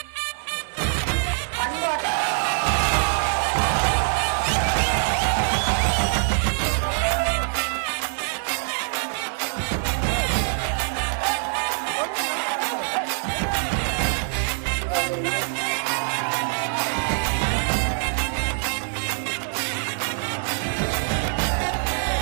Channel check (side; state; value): left; silent; 62 dB below the other